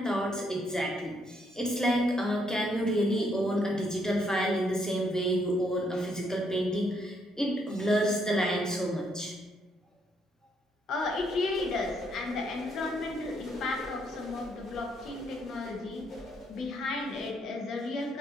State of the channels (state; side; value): normal; both; correlation 0.73